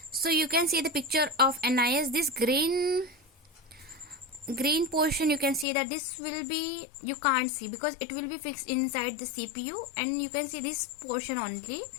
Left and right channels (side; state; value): right; drops out; at 5.7 s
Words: So you can see the picture of NIS. This green portion, you can see that this will be, you can't see because it will be fixed inside the CPU, and you can see this portion only.